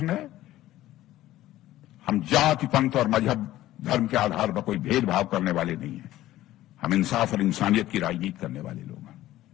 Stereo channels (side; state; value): right; quieter; 14.9 dB